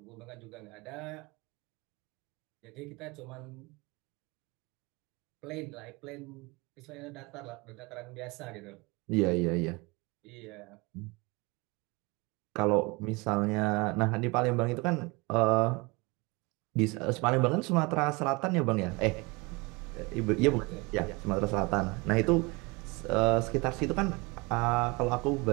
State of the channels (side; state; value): left; quieter; 26.2 dB